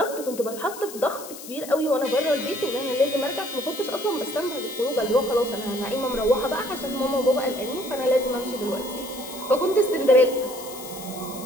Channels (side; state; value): left; noise; hiss, 13 dB below the sound